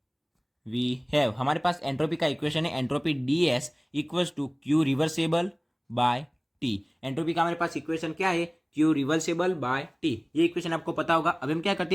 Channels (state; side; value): identical; both; correlation 1.00